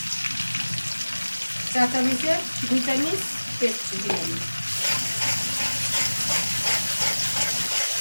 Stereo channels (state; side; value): inverted; both; correlation -1.00